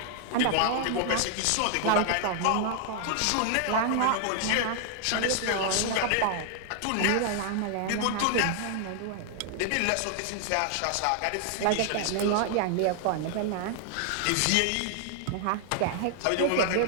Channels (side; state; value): both; different; correlation 0.00